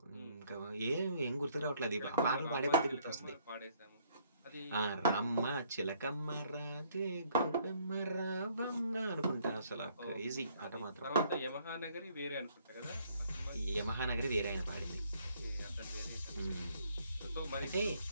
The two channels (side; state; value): both; inverted; correlation -0.65